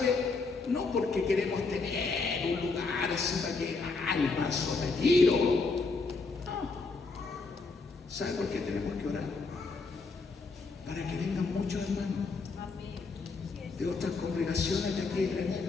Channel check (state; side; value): quieter; right; 4.1 dB